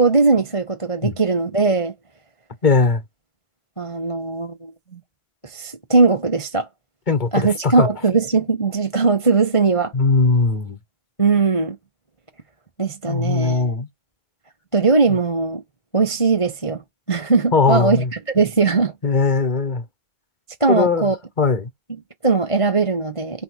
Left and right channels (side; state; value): right; late; 1.5 ms